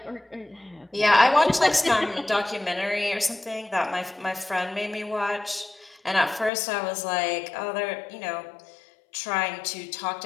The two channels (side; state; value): right; drops out; at 6.5 s